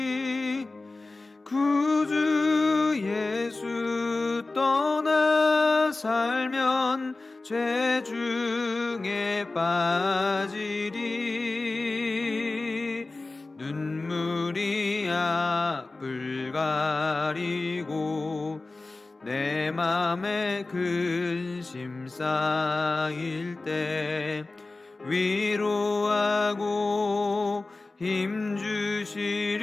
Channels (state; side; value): quieter; right; 3.3 dB